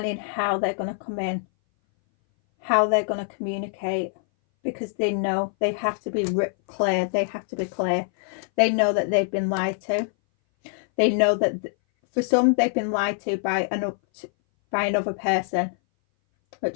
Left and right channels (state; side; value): silent; right; 60 dB below the other